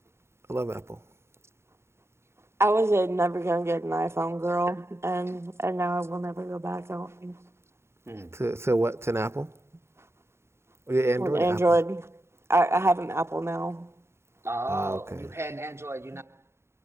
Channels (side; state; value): left; late; 0.13 ms